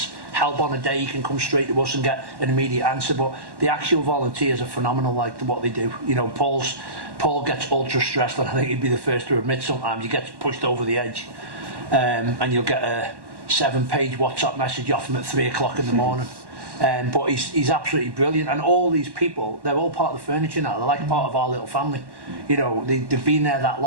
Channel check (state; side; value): late; left; 1.1 ms